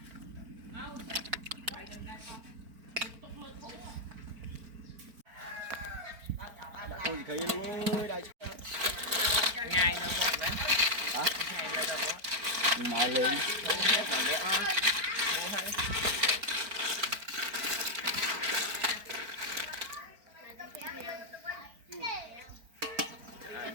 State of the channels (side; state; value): left; late; 4.4 ms